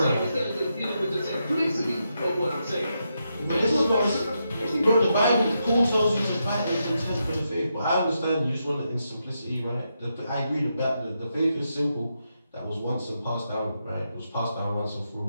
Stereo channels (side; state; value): both; inverted; correlation -0.84